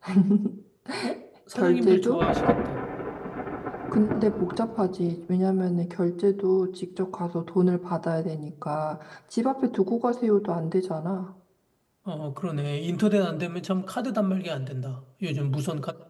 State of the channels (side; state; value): both; identical; correlation 1.00